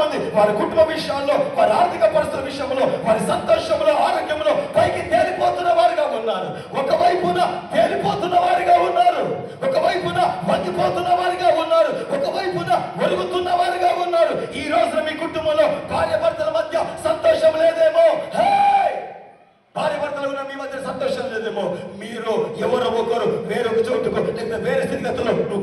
వారి కుటుంబ విషయాల్లో, వారి ఆర్థిక పరిస్థితుల విషయంలో, వారి సంతోషంలో, ఆరోగ్యంలో పైకి తేలిపోతున్న వారుగా ఉన్నారు. ఒకవైపున తేలిపోతున్న వారిగా ఉన్నారు, ఒకవైపున వంగిపోతున్న వారిగా ఉన్నారు, ఒకవైపున ఒరుగుతున్న వారిగా ఉన్నారు. ఈ రోజున మీ కుటుంబంలో భార్య భర్తల మధ్య సంతోషం లేదేమో. భార్య భర్తలు ఉన్న మీ మధ్య సంతోషం లేదేమో. మీరు ఎవరో ఒకరు వేరొక చోటుకు లేదా వేరే స్థితిగతుల్లో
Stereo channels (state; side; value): identical; both; correlation 1.00